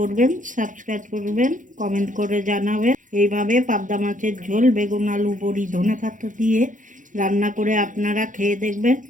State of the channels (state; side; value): late; left; 0.37 ms